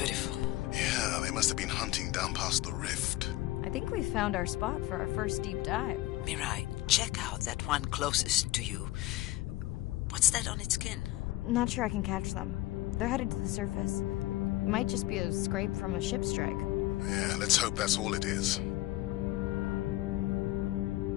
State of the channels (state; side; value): quieter; right; 17.2 dB